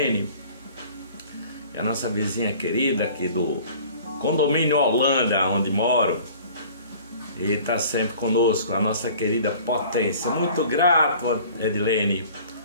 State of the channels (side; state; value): both; inverted; correlation -0.48